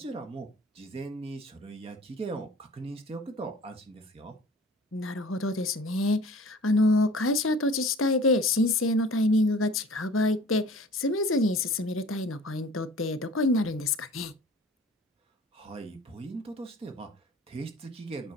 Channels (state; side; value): normal; both; correlation 0.46